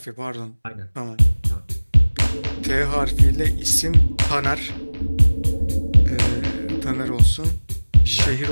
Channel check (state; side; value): inverted; both; correlation -1.00